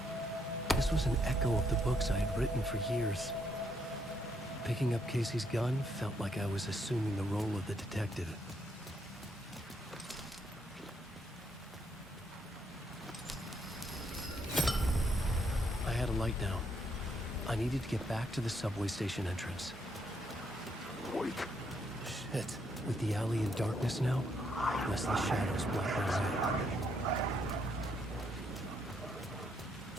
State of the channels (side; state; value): both; normal; correlation 0.74